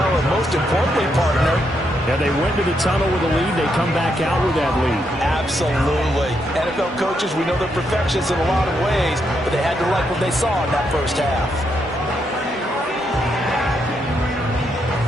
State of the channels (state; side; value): normal; both; correlation 0.79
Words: and most importantly, partner, yeah, they went to the tunnel with a lead. They come back out with that lead. Absolutely. NFL coaches, we know they're perfectionists in a lot of ways, but they had to like what they saw in that first half.